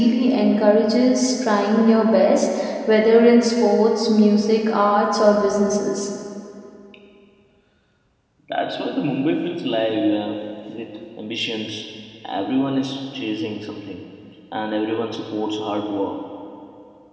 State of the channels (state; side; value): identical; both; correlation 1.00